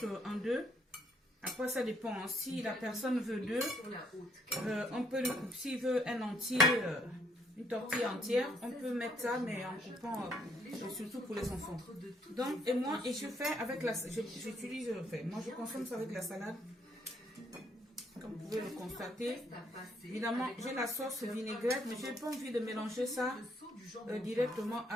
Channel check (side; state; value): both; normal; correlation 0.69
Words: en deux. Après, ça dépend. Si la personne veut deux, on peut le couper. S'il veut un entier, une tortille entière. On peut mettre ça, mais en coupant, surtout pour les enfants. Donc, et moi, et je fais avec la... J'utilise, moi je consomme ça avec la salade. Comme vous pouvez le constater. Évidemment, j'ai la sauce vinaigrette, mais je n'ai pas envie de mélanger ça directement